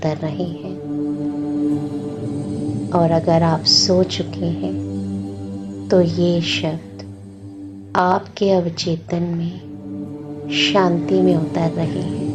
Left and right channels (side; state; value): both; identical; correlation 1.00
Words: रहे हैं। और अगर आप सो चुके हैं तो ये शब्द आपके अवचेतन में शांति में उतर रहे हैं।